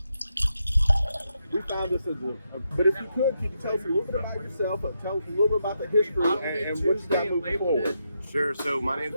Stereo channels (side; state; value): both; inverted; correlation -0.83